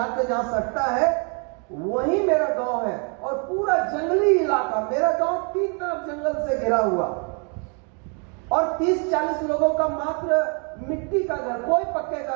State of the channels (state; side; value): quieter; left; 38.0 dB